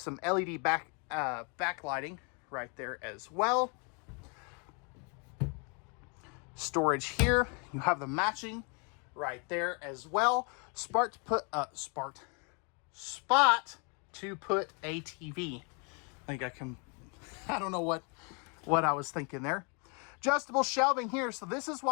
LED backlighting right there as well. Storage here. You have the matching right there as well. Spot to put a TV. I don't know what I was thinking there. Adjustable shelving here. So this is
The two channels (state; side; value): quieter; right; 35.2 dB